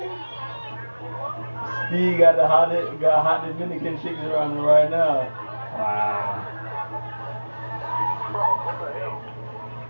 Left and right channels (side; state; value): both; inverted; correlation -1.00